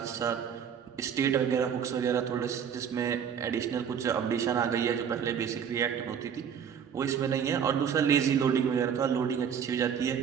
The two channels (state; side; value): quieter; left; 7.8 dB